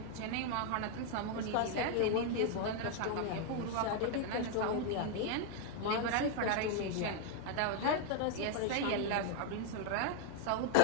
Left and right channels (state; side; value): different; both; correlation 0.00